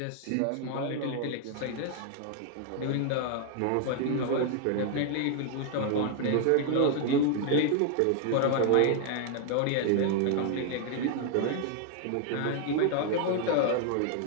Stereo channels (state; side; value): different; both; correlation 0.00